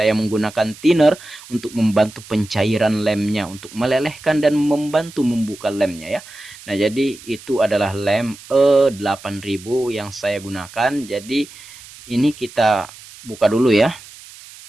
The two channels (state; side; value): noise; right; hiss, 19 dB below the sound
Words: menggunakan thinner untuk membantu pencairan lemnya, untuk melelehkan dan membantu membuka lemnya ya. Nah, jadi itu adalah lem E8000 yang saya gunakan. Jadi ini kita buka dulu ya.